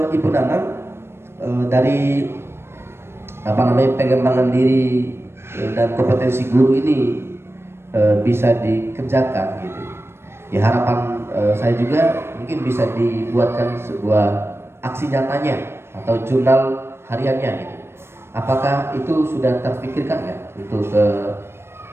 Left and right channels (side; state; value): left; late; 0.12 ms